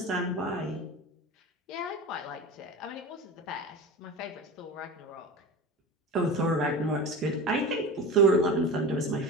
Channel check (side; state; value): both; normal; correlation 0.30